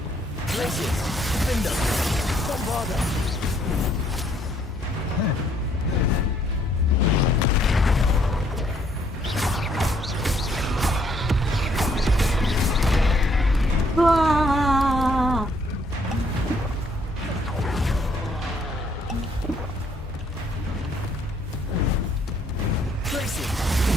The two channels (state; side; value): normal; both; correlation 0.67